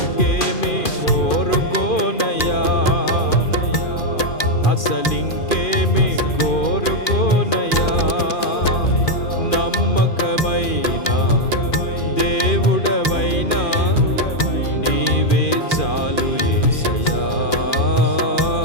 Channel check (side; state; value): right; late; 2.4 ms